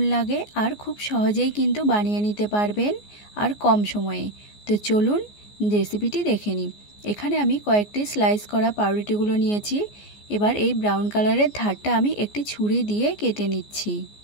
लागे और खूब सहजेई किन्तु बानिये निते पारबेन और कम समये। तो चलुन रेसिपिटी देखे निই। एखाने आमी कयेकटी स्लाइस करा पाउरुटिगुलो निয়েছি। एबार এই ब्राउन कालारेर धारटा आमी एकटी छुरी दिए केटे निচ্ছি।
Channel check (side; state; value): right; late; 14 ms